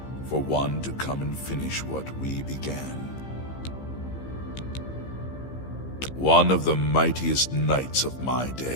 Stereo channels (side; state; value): right; late; 15 ms